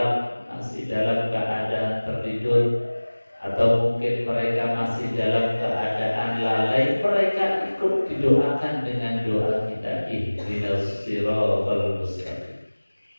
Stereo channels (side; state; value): both; inverted; correlation -1.00